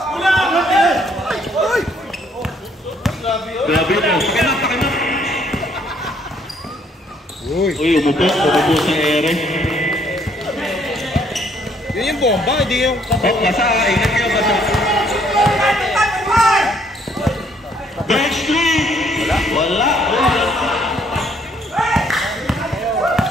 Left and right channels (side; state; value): both; normal; correlation 0.66